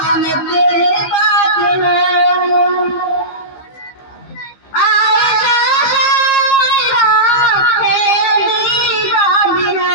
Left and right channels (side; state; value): right; late; 15 ms